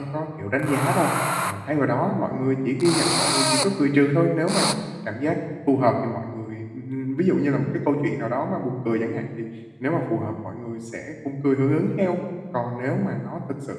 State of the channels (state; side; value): identical; both; correlation 1.00